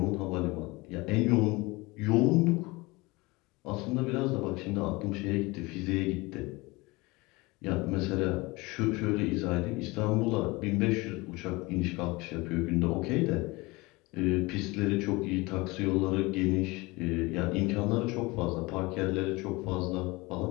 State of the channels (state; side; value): quieter; right; 23.4 dB